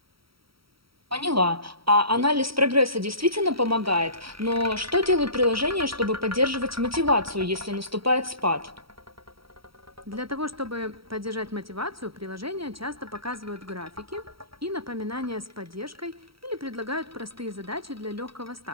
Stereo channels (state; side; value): late; left; 0.75 ms